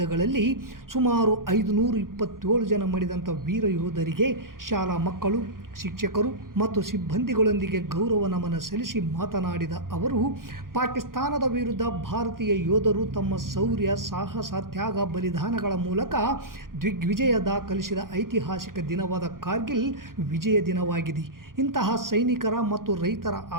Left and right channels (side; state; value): left; late; 0.91 ms